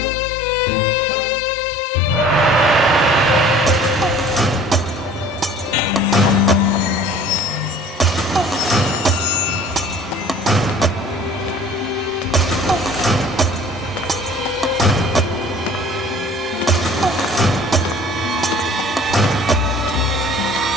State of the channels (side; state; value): both; normal; correlation 0.49